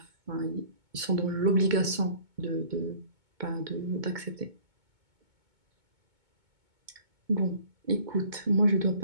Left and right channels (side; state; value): left; late; 2.2 ms